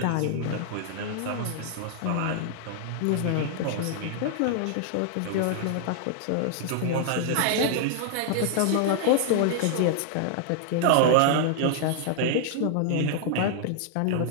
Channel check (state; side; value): different; both; correlation -0.01